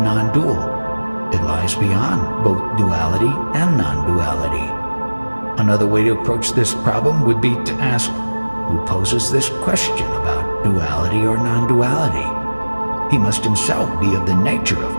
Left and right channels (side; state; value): both; inverted; correlation -1.00